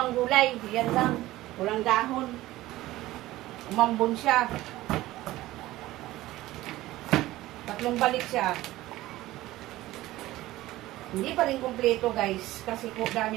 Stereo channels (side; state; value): left; quieter; 16.8 dB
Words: gulay. Yan lang. Walang dahon. Umambon siya. Tatlong balik siya. Hindi pa rin kumpleto guys. Kasi